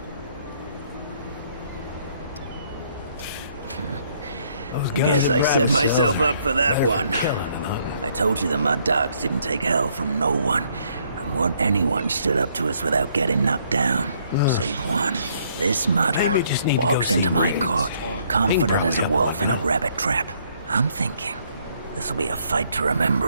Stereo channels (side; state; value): both; inverted; correlation -0.67